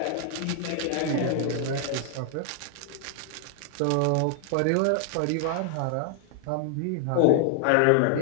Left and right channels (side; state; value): both; different; correlation 0.00